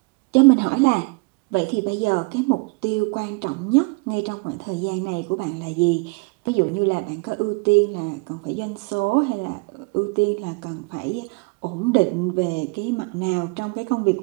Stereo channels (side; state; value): left; quieter; 30.2 dB